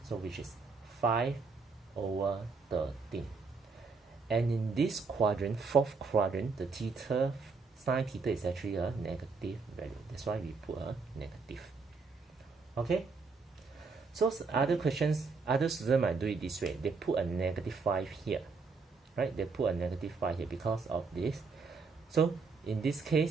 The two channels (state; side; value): quieter; left; 4.6 dB